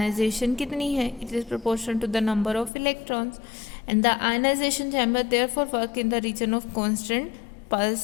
कितनी है, it is proportional to the number of electrons and the ionization chamber therefore work in the region of constant pulse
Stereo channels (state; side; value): drops out; right; at 2.7 s